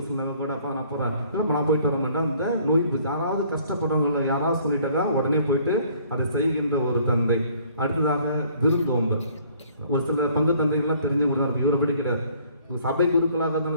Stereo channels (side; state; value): both; inverted; correlation -0.59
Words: கூட அப்போ நான் போகிறேன், இல்லை நான் போயிட்டு வர மாட்டேன். அந்த நோய் யாராவது கஷ்டப்படுறவங்கள யாராவது சொல்லிட்டாக்கா உடனே போயிட்டு அதை செய்கின்ற ஒரு தந்தை. அடுத்ததாக விருந்தோம்பல். ஒரு சில பங்கு தந்தைகள்லாம் தெரிஞ்சவங்க தான் இருக்கும், இவரை படிக்கிறார். சபை குருக்களாக